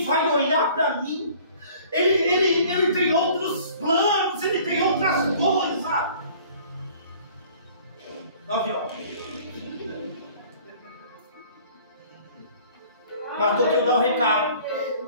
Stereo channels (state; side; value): inverted; both; correlation -0.52